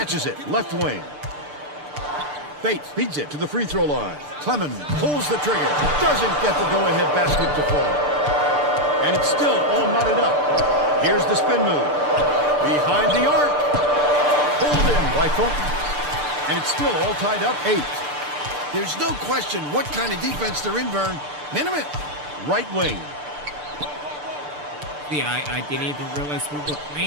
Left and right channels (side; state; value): left; late; 6.8 ms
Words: it, left wing. Bates feeds it to the free throw line. Clemens pulls the trigger. Doesn't get the go-ahead basket to fall. And it's still all knotted up. Here's the spin move. Behind the arc. Pulled in by Thornton. And it's still all tied up 8. There's no question what kind of defense they're in, Vern. Minimum. Right wing. See, I didn't even realize we were